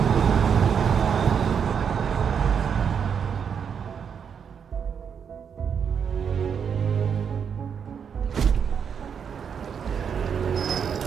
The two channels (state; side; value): quieter; left; 7.2 dB